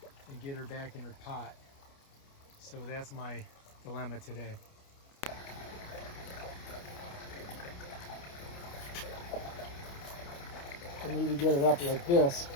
and get her back in her pot. So that's my dilemma today. I need to get it up like this.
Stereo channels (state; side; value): late; right; 29 ms